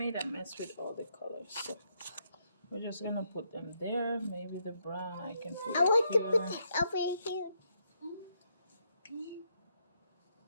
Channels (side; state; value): both; inverted; correlation -0.77